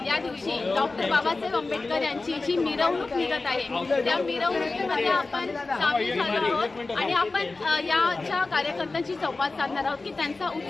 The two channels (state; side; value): quieter; right; 3.5 dB